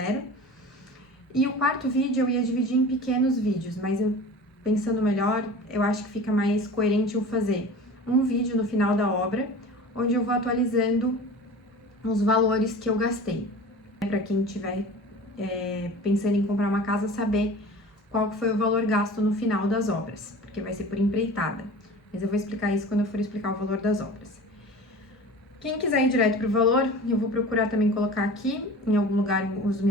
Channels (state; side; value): normal; both; correlation 0.38